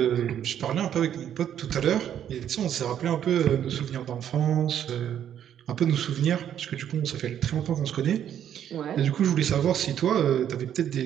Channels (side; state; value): left; quieter; 9.9 dB